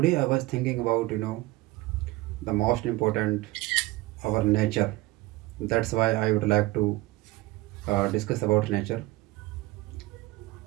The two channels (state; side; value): quieter; left; 19.5 dB